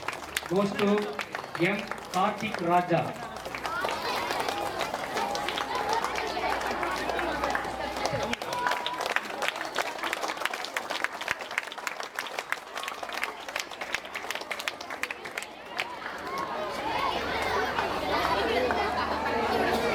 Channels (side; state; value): both; identical; correlation 1.00